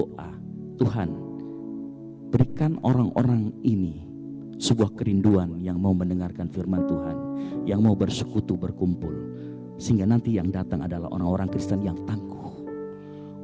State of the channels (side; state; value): both; identical; correlation 1.00